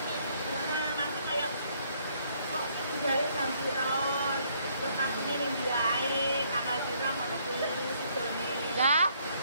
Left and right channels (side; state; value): both; inverted; correlation -0.67